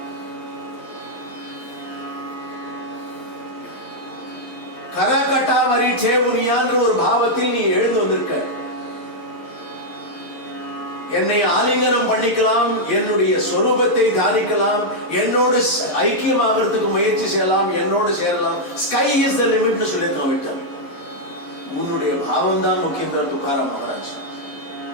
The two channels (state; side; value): late; right; 11 ms